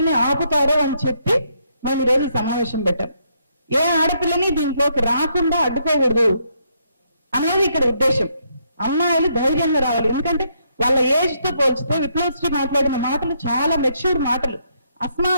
ఆపుతారో అని చెప్పి మేము ఈరోజు సమావేశం పెట్టాం. ఏ ఆడపిల్లని దీంట్లోకి రాకుండా అడ్డుకోకూడదు అనేది ఇక్కడ ఉద్దేశం. అమ్మాయిలు ధైర్యంగా రావాలి. ఎందుకంటే వాళ్ళ ఏజ్ తో పోల్చితే విప్లవశ్రీ మాట్లాడిన మాటలు చాలా మెచ్యూర్ మాటలు. అస్మా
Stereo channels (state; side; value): inverted; both; correlation -0.74